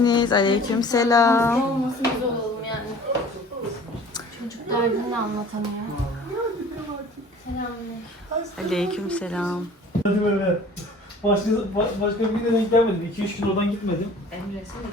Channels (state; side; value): normal; both; correlation 0.47